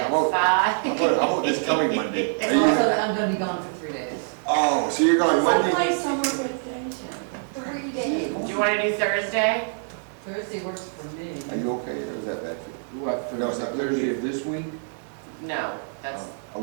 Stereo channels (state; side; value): silent; left; 62 dB below the other